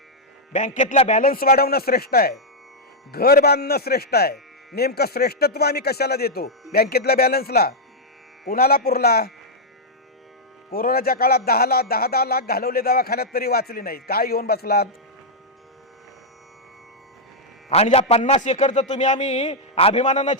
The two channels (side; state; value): both; normal; correlation -0.04